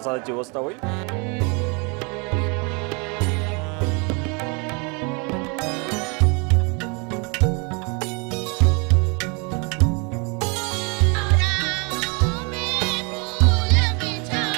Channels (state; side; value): quieter; left; 32.1 dB